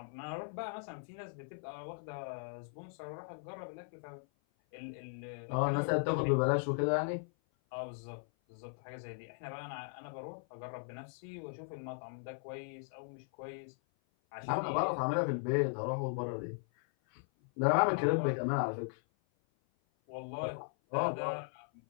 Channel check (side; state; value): right; silent; 53 dB below the other